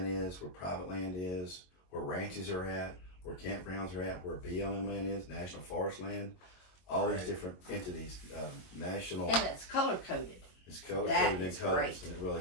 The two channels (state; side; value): late; right; 22 ms